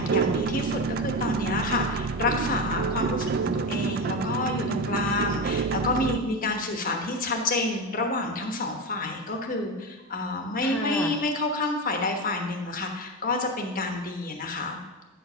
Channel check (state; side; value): normal; both; correlation 0.18